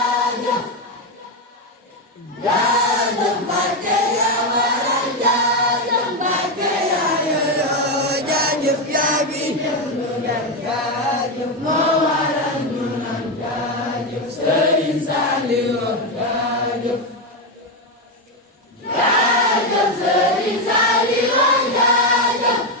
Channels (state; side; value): normal; both; correlation 0.09